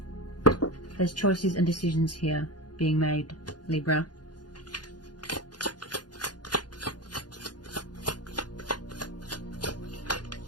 There's choices and decisions here being made, Libra.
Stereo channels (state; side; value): late; right; 0.69 ms